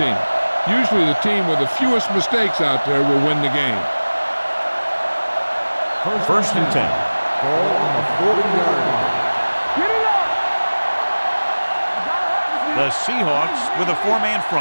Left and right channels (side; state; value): both; inverted; correlation -1.00